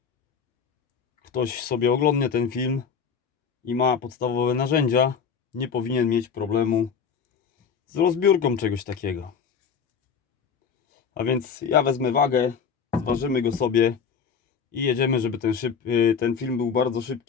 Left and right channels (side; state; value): right; quieter; 6.4 dB